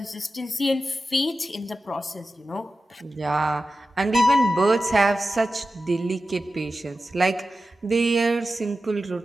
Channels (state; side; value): normal; both; correlation 0.93